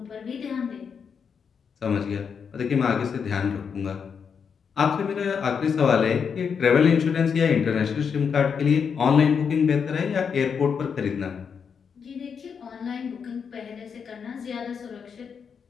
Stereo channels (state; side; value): quieter; right; 6.5 dB